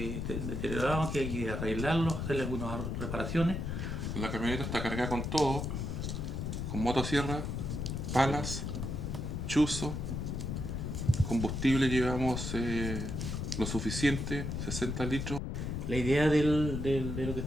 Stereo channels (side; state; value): left; noise; rumble, 3 dB below the sound